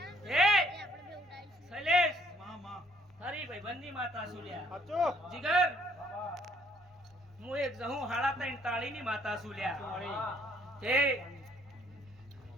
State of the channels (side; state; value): both; normal; correlation 0.65